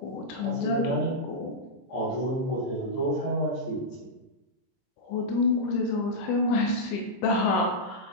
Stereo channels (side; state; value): right; late; 23 ms